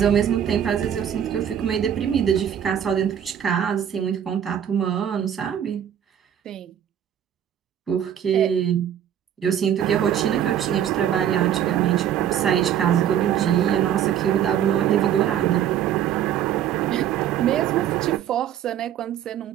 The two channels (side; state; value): left; quieter; 9.8 dB